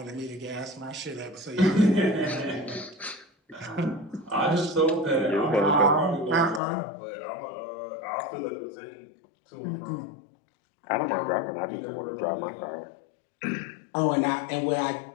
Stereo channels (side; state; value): right; drops out; at 6.6 s